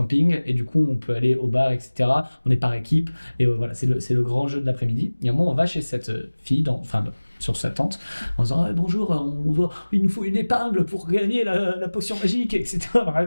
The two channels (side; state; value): both; inverted; correlation -1.00